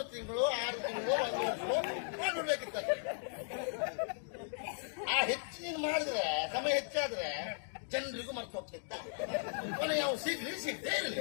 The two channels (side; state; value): right; silent; digital silence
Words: ತಿಂಗಳು 6 ತಿಂಗಳು 1 ವರ್ಷ ಮಾಡ್ಬಿಡ್ಬೇಕಿತ್ತ. ಆ ಹೆಚ್ಚು ನೀನು ಮಾಡಿದ್ರೆ ಸಮಯ ಹೆಚ್ಚಾದ್ರೆ ಜನರಿಗೂ ಮರ್ತು ಹೋಗ್ತಿತ್ತ. ಕೊನೆ ಯಾವ ಸಿಗದೇ ಇರಲಿ.